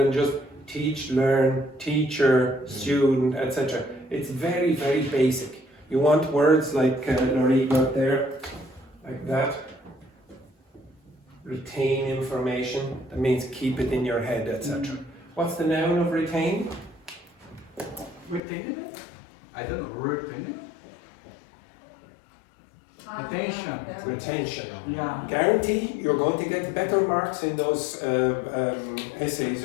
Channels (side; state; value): right; drops out; at 18.4 s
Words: just teach, learn, teacher, student, etc. It's very, very basic. You want words like Laurie got there, like that. Retain information. That means keep it in your head, etc. What's the noun of retain? Retaining it? I don't know, retaining it? Attention. Retention. Yeah. Guarantee you're going to get better marks in those essays